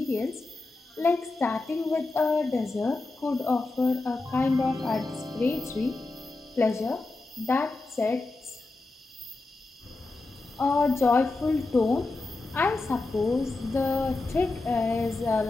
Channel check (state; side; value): quieter; right; 3.3 dB